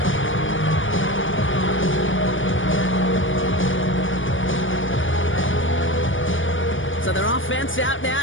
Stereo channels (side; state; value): right; late; 0.57 ms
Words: So their offense out now